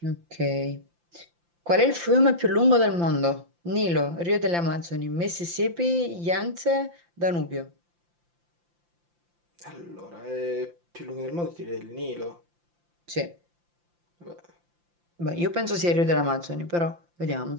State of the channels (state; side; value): late; left; 5.8 ms